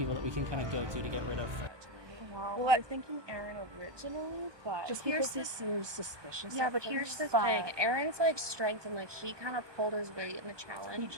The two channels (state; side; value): late; left; 1.2 ms